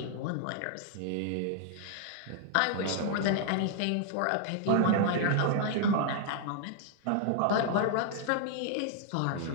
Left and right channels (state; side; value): different; both; correlation -0.01